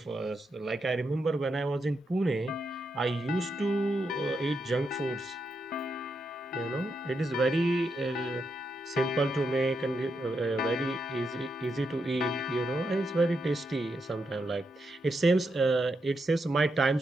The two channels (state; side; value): normal; both; correlation 0.83